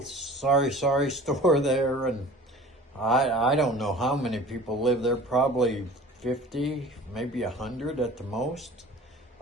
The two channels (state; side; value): normal; both; correlation 0.43